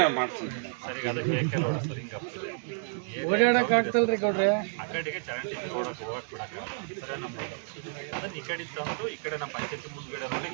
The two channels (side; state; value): left; silent; digital silence